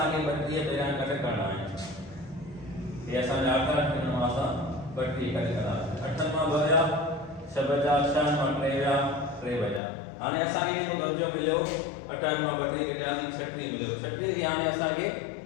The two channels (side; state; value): right; drops out; at 9.8 s